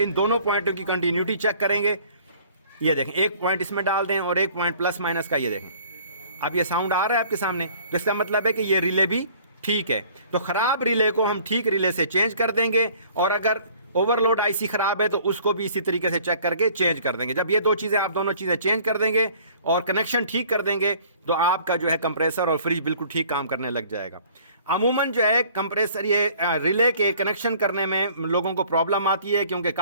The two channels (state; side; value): inverted; both; correlation -0.53